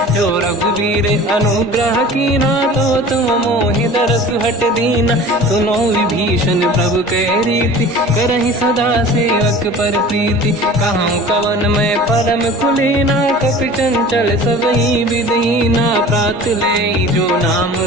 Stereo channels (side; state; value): both; normal; correlation 0.41